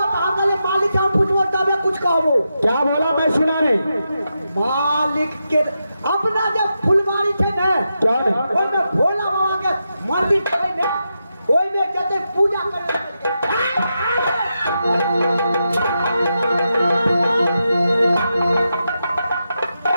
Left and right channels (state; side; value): inverted; both; correlation -0.87